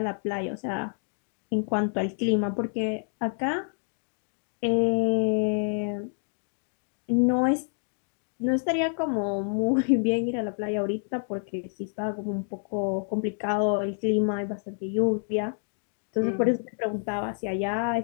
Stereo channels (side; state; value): right; silent; 59 dB below the other